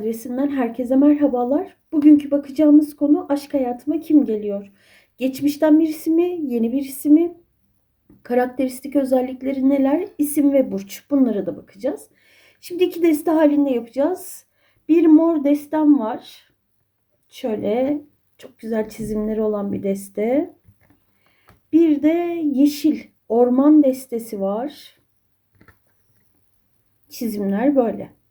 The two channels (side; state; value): both; identical; correlation 1.00